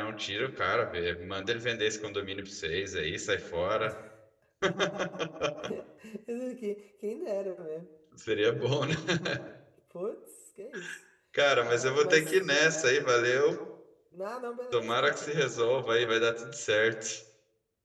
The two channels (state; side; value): identical; both; correlation 1.00